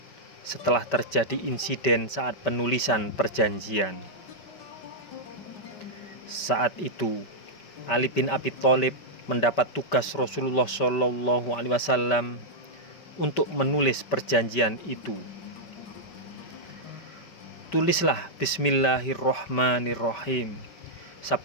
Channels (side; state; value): right; late; 5.2 ms